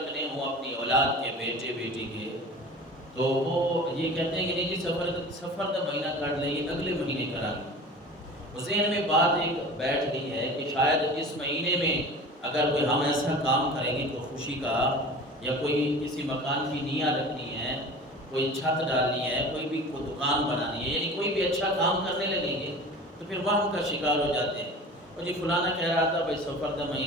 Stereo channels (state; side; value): normal; both; correlation 0.38